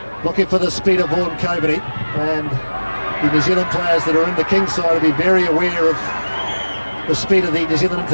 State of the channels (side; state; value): both; inverted; correlation -1.00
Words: looking for the speed of Vaughan Coveney, and the New Zealand players that are in the Kings side will be very aware of the speed of the New Zealand